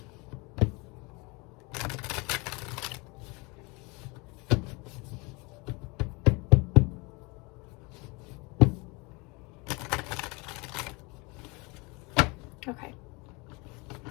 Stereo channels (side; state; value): right; quieter; 27.5 dB